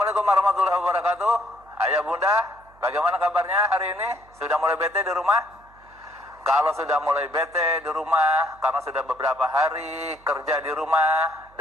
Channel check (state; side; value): noise; right; hum, 28 dB below the sound